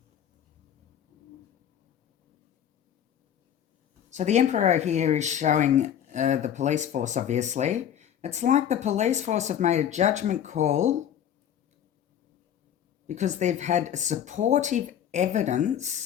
So the emperor here is showing the police force, obviously. It's like the police force have made a judgment call because they've had supportive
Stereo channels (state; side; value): quieter; right; 9.7 dB